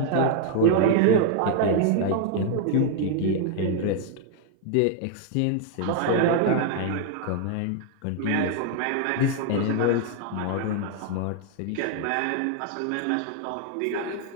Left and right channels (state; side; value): different; both; correlation 0.00